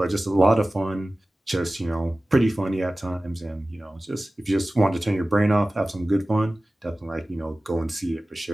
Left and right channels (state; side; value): normal; both; correlation 0.97